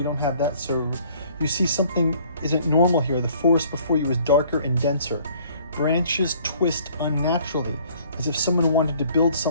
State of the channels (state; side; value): inverted; both; correlation -0.57